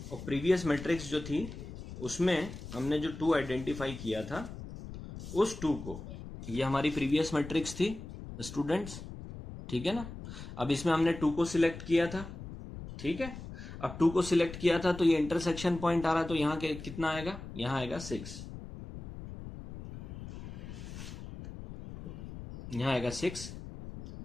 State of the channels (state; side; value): noise; left; rumble, 11 dB below the sound